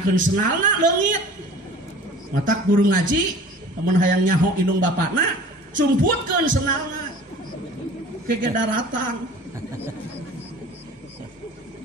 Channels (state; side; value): normal; both; correlation 0.44